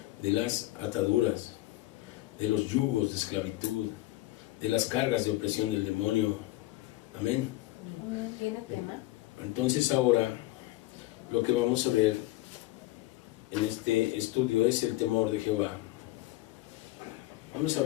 de las ataduras, de los yugos de esclavitud, de las cargas de opresión del demonio. Amén. ¿Tiene tema? Entonces ahora lo que vamos a ver en este estudio es el temor de Jehová. Vamos a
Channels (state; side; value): quieter; right; 17.9 dB